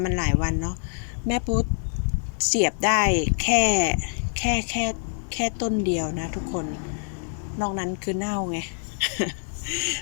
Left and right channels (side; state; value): right; silent; 61 dB below the other